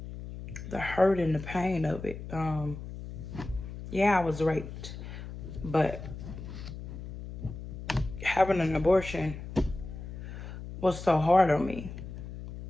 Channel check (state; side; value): noise; left; hum, 10 dB below the sound